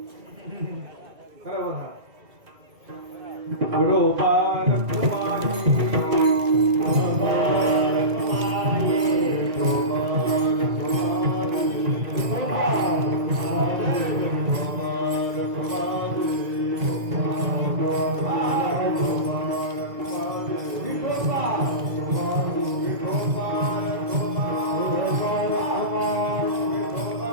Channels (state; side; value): late; left; 2.1 ms